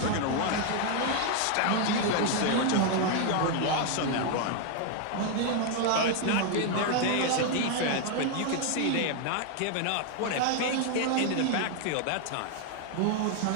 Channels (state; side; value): different; both; correlation 0.01